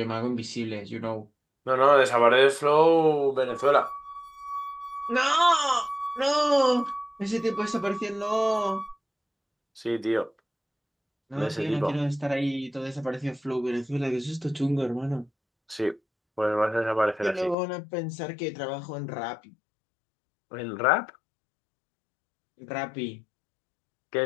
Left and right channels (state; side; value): drops out; right; at 17.6 s